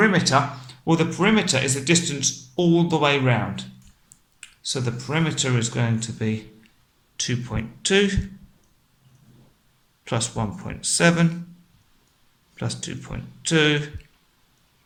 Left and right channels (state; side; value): identical; both; correlation 1.00